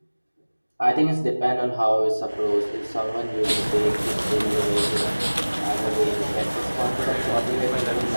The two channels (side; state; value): both; inverted; correlation -1.00